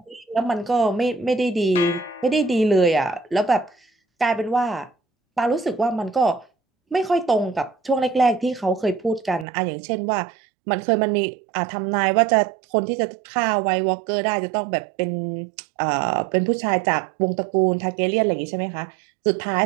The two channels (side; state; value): left; drops out; at 9.5 s